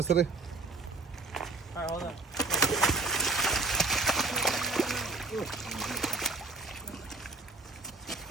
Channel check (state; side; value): quieter; left; 3.5 dB